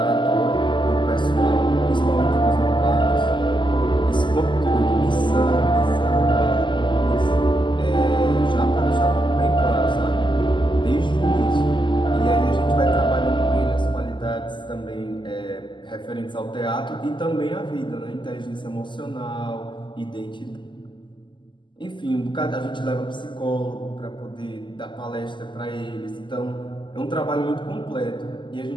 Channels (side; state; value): right; late; 0.23 ms